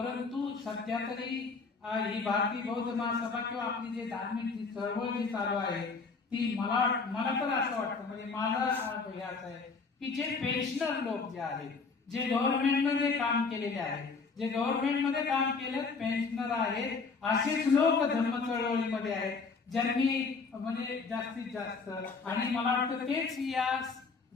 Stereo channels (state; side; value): quieter; right; 4.6 dB